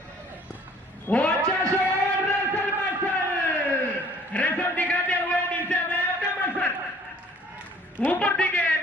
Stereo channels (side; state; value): both; normal; correlation 0.54